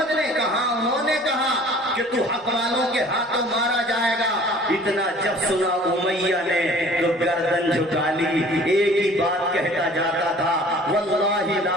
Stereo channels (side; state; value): both; normal; correlation 0.50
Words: نے کہا, انہوں نے کہا کہ تو حق والوں کے ہاتھوں مارا جائے گا. اتنا جب سنا امیہ نے تو گردن جھکا لی, ایک ہی بات کہتا جاتا تھا, واللہ لا